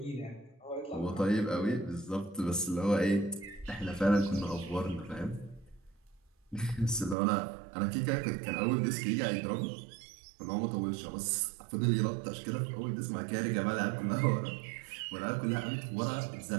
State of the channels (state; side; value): drops out; left; at 7.2 s